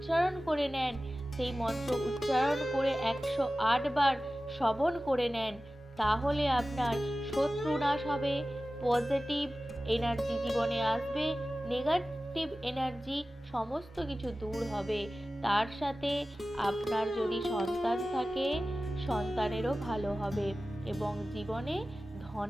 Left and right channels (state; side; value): normal; both; correlation 0.96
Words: করে নেন, সেই মন্ত্র উচ্চারণ করে 108 বার শ্রবণ করে নেন, তাহলে আপনার শত্রু নাশ হবে, পজিটিভ এনার্জি জীবনে আসবে, নেগেটিভ এনার্জি সমস্ত কিছু দূর হবে। তার সাথে আপনার যদি সন্তান থাকে, সন্তানেরও ভালো হবে এবং জীবনে